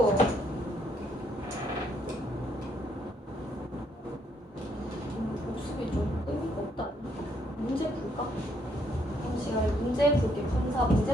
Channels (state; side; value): normal; both; correlation 0.71